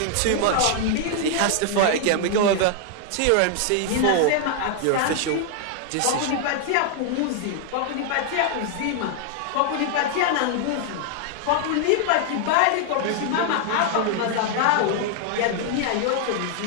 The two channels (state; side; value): different; both; correlation 0.00